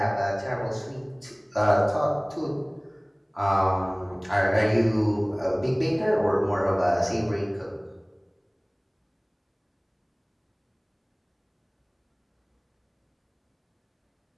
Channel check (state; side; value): identical; both; correlation 1.00